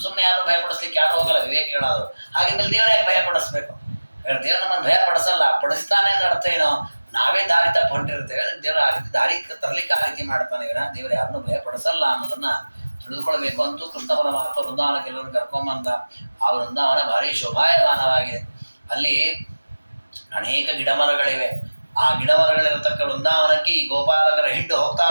ಸುಮ್ಮನೆ ಯಾರು ಭಯಪಡಿಸ್ಲಿಕ್ಕೆ ಯಾರು ಹೋಗಲ್ಲ, ವಿವೇಕ ಹೇಳೋದು. ಹಾಗಿದ್ಮೇಲೆ ದೇವ್ರ ಯಾಕೆ ಭಯಪಡಿಸ್ಬೇಕು? ದೇವ್ರು ನಮ್ಮನ್ನು ಭಯಪಡಿಸಲ್ಲ, ಪಡಿಸ್ತಾನೆ ಅಂದ್ರೆ ಅರ್ಥ ಏನೋ, ನಾವೇ ದಾರಿ ತಪ್ಪು ಹೊಂಟಿರ್ತೇವೆ. ಅದಕ್ಕೆ ದೇವ್ರ ಆ ರೀತಿ ದಾರಿ ತರಲಿಕ್ಕೆ ಆ ರೀತಿ ಮಾಡ್ತಾನೆ ವಿನ ದೇವ್ರು ಯಾರನ್ನೂ ಭಯಪಡಿಸಲ್ಲ ಅನ್ನೋದನ್ನ ತಿಳಿದುಕೊಳ್ಬೇಕು. ಅಂತೂ ಕೃಷ್ಣ ಪರಮಾತ್ಮ ವೃಂದಾವನಕ್ಕೆ ಎಲ್ಲರನ್ನು ಕರ್ಕೊಂಬಂದ. ಆ ವೃಂದಾವನ ಭಾರಿ ಶೋಭಾಯಮಾನವಾಗಿದೆ. ಅಲ್ಲಿ ಅನೇಕ ಗಿಡಮರಗಳಿವೆ. ಆ ಗಿಡಮರಗಳಿರತಕ್ಕ ವೃಂದಾವನಕ್ಕೆ ಈ ಗೋಪಾಲಕರ ಹಿಂಡು ಹೋಗ್ತಾ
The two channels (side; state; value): both; inverted; correlation -1.00